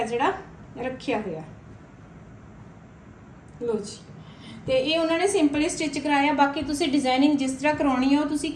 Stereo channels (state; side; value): identical; both; correlation 1.00